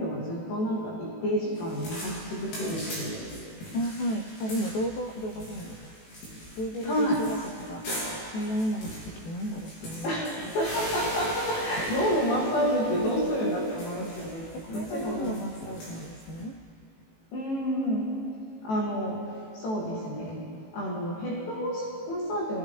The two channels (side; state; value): right; late; 18 ms